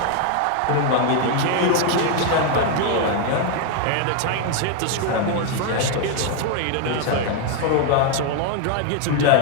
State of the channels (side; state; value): both; different; correlation 0.01